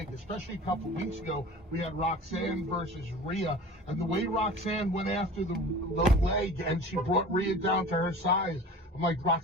especially a couple of weeks ago. We had Roxanne versus Rhea, and the way Roxanne went after the leg and she brought Rhea down to her size. I'm like,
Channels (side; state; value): both; normal; correlation 0.39